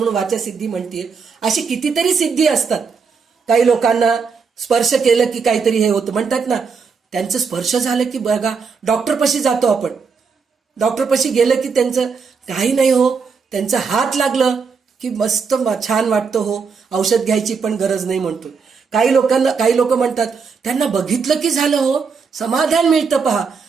वाचा सिद्धी म्हणतीये. अशी कितीतरी सिद्धी असतात. काही लोकांना स्पर्श केलं की काहीतरी हे होतं म्हणतात ना, त्यांचं स्पर्श झालं की बघा डॉक्टरपाशी जातो आपण, डॉक्टरपाशी गेलं की त्यांचं काही नाही हो, त्यांचा हात लागलं की मस्त छान वाटतं हो, औषध घ्यायची पण गरज नाही म्हणतो. काही लोक म्हणतात त्यांना बघितलं की झालं हो, समाधान मिळतं पहा.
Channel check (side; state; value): left; quieter; 5.4 dB